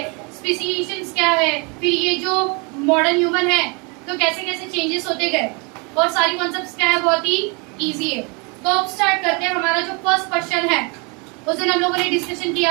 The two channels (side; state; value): left; quieter; 31.6 dB